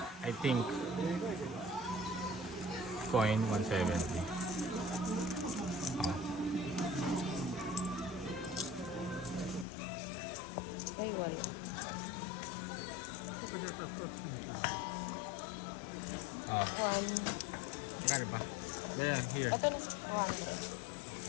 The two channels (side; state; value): right; drops out; at 9.7 s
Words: I think coin 170. Ah. Ayun. Ah. Magkano ba? Yeah, here. Ito na